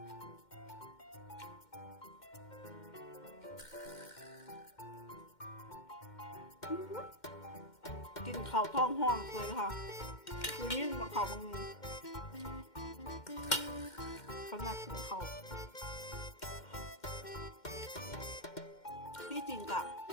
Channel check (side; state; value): right; late; 2.1 ms